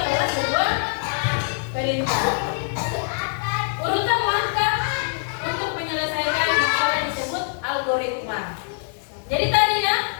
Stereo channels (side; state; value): right; silent; digital silence